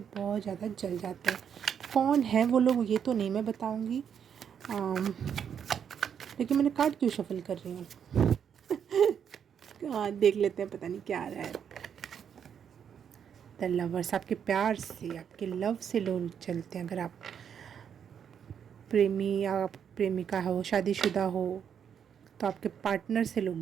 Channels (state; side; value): quieter; left; 8.0 dB